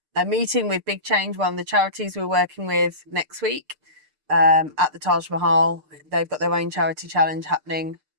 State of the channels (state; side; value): late; left; 6.6 ms